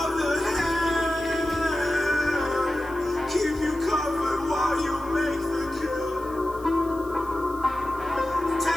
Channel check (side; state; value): left; noise; hiss, 24 dB below the sound